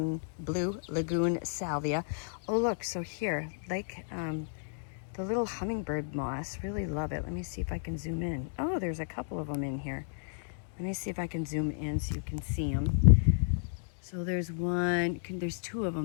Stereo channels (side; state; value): right; silent; digital silence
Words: Salvia. Oh look, so here, like the little hummingbird moss, really love it. Let me see if I can zoom in. Oh, there's a couple of them in here. Let me see if I can zoom in so you can see them. So there's there's two of